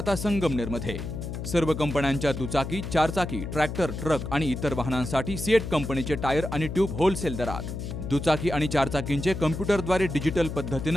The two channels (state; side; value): noise; left; hum, 6 dB below the sound